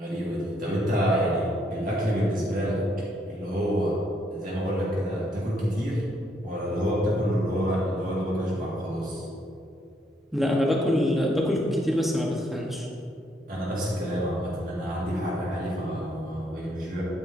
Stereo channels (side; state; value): both; normal; correlation 0.72